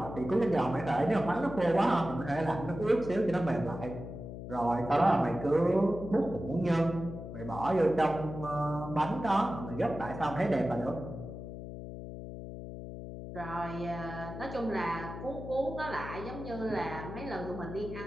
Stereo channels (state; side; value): noise; left; hum, 9 dB below the sound